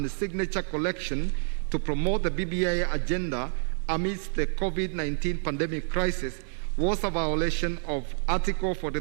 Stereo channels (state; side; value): silent; left; digital silence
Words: signature collection to promote the BBI agenda amidst the COVID-19 pandemic crisis, was a violation of Article